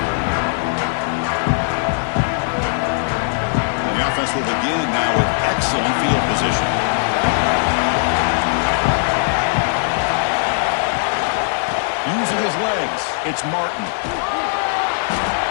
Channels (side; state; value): right; silent; 62 dB below the other